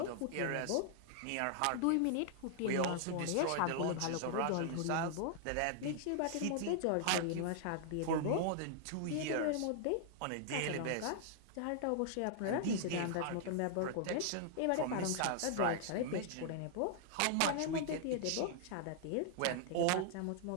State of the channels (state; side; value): different; both; correlation -0.01